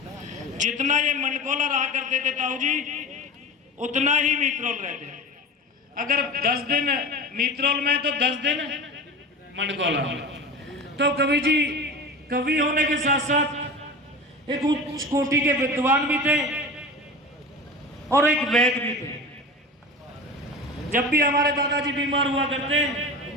जितना ये मंडकोला रहा करते थे ताऊ जी उतना ही मीतरोल रहते। अगर 10 दिन मीतरोल में तो 10 दिन मंडकोला। तो कवि जी कवि होने के साथ साथ एक उच्च कोटि के विद्वान भी थे और एक वैद्य भी थे। जब भी हमारे दादाजी बीमार हुआ करते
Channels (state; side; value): normal; both; correlation 0.31